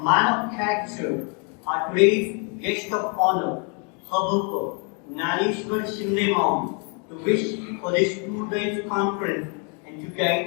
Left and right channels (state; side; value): quieter; right; 36.3 dB